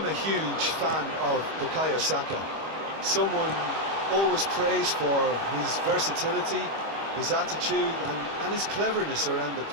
a huge fan of Bukayo Saka. Someone always praised for his versatility, his attitude and his cleverness around the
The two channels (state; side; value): late; left; 25 ms